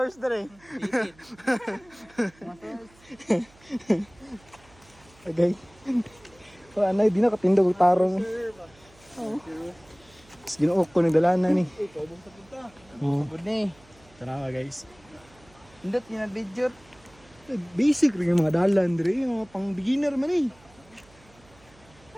dire. Okay. So anay di na katindog tarong. Oh. Ginuok ko nagdalanan ni. Ikaw bang sa punta? Oh. Good ni. Tara guys. Indot ni video. Basic rin yung mga dalan dire, yung mga pang beginner man eh.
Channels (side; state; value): right; noise; hum, 28 dB below the sound